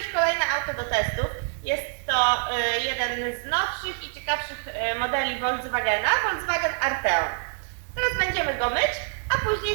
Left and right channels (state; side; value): silent; left; digital silence